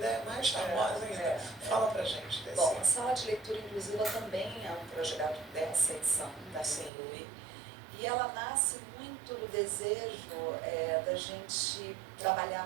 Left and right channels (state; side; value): drops out; left; at 6.9 s